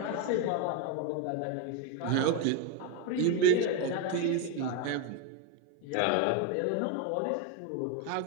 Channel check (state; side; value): different; both; correlation 0.02